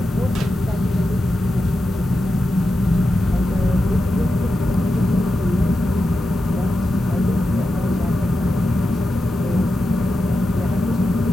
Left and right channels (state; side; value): normal; both; correlation 0.90